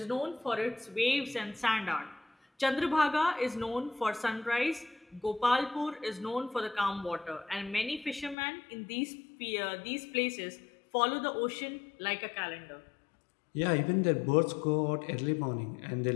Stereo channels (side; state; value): right; drops out; at 8.3 s